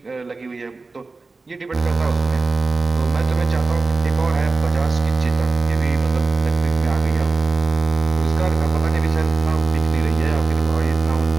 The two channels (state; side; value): quieter; left; 3.8 dB